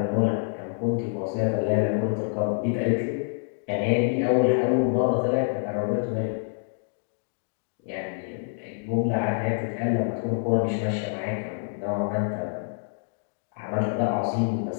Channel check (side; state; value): right; silent; digital silence